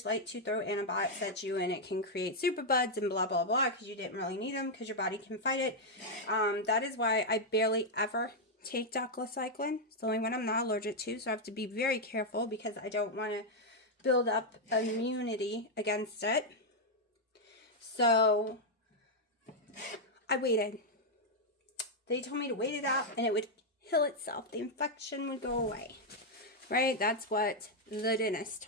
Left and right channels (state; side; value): normal; both; correlation -0.01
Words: like to throw antibiotics at you, and it can create superbugs and blah, blah, blah, because you didn't really need them because your body can fight it. That is why I barely ever take doxycycline. It's the only one I'm not allergic to, so I have to be very careful because I don't want to build up immunity against it. So I waited. They told me to wait it out and it would heal itself. The infection would go away. Right? That's what the dentist